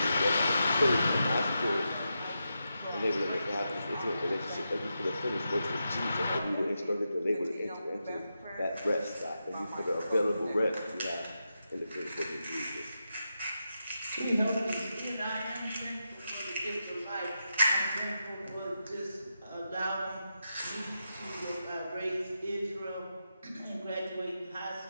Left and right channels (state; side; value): inverted; both; correlation -0.87